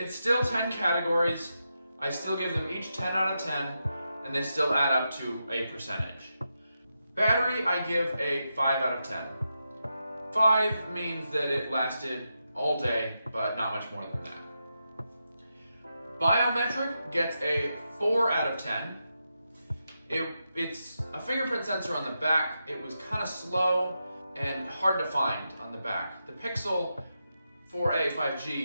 still 10 categories. I still give them each 10 out of 10, and they still add up to a percentage. Battery, I give a 5 out of 10. 5 means that it lasted all day, but not much more than that. Biometric gets a 4 out of 10. It's a fingerprint sensor on the back. It was kind of slow and hard to find on the back. The Pixel 4a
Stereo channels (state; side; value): inverted; both; correlation -0.87